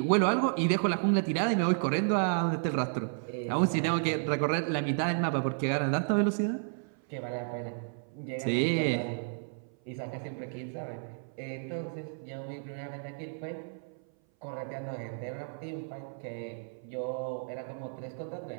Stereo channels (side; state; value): left; silent; 56 dB below the other